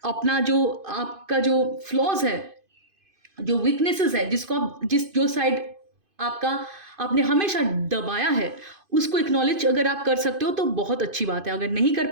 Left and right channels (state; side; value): late; left; 2.5 ms